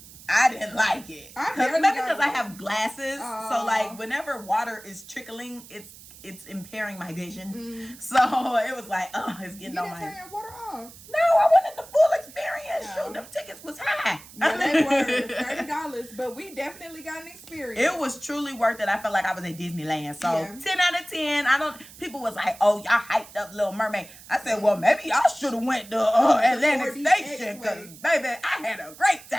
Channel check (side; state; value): right; noise; hiss, 19 dB below the sound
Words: I didn't like it. Maybe because I have glasses, so like whenever water is trickling, it's impairing my vision. So it was like, oh, it's getting on my. You didn't turn your water off. No, I wanted the full experience. No. Shoot, them tickets was high. Yeah, they were $30, but we definitely got an experience. It was truly worth it. I felt like I was at Disneyland. So Yeah. 10 out of 10. People was like, oh, y'all hyped up Little Mermaid. I said, well, maybe y'all should have went to Atlantic 4DX Station, because baby, I had a great